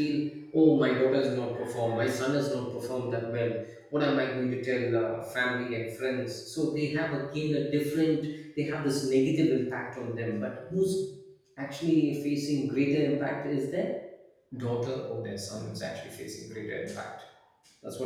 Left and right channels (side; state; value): both; identical; correlation 1.00